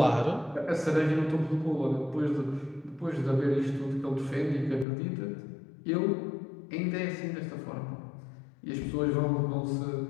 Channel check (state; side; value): drops out; right; at 4.9 s